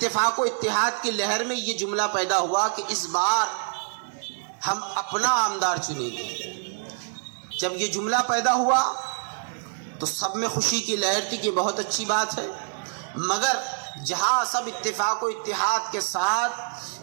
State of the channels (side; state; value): left; silent; digital silence